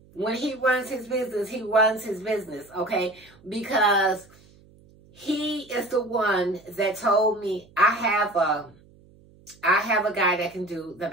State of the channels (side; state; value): right; noise; hum, 27 dB below the sound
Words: when he runs his business, okay? Because he is the one that told me, I have a guy that can do the